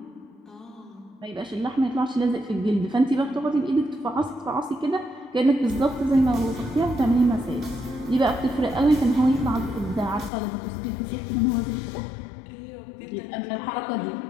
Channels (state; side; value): drops out; right; at 10.3 s